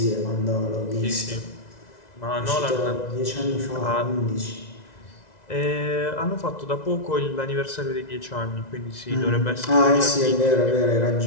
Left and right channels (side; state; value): right; late; 2.0 ms